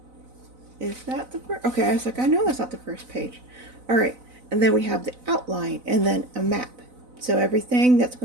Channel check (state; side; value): late; left; 4.0 ms